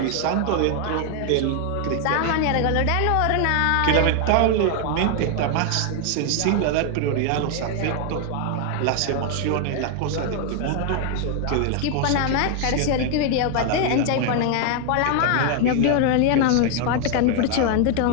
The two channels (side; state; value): both; different; correlation 0.00